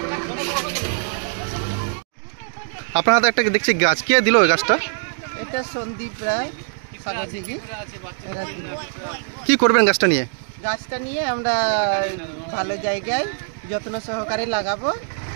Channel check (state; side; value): silent; left; digital silence